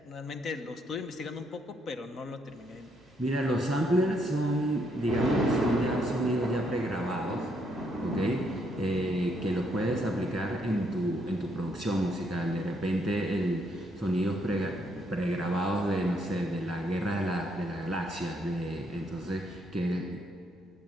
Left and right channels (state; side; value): normal; both; correlation 0.73